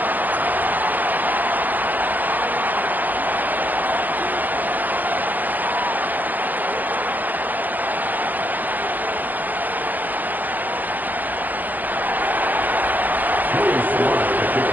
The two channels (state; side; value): late; left; 0.084 ms